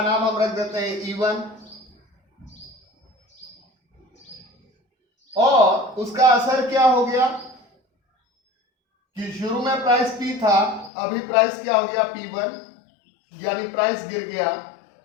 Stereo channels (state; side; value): drops out; right; at 10.9 s